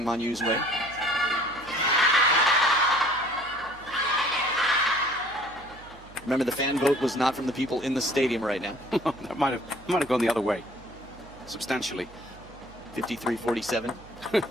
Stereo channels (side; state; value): right; noise; hum, 21 dB below the sound